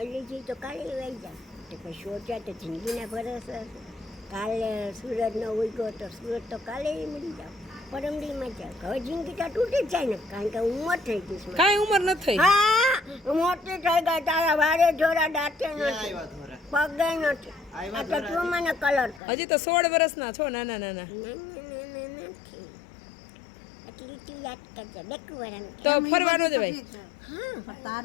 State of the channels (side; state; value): right; drops out; at 19.2 s